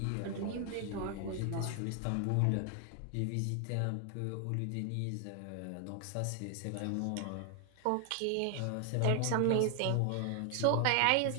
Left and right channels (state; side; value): different; both; correlation 0.00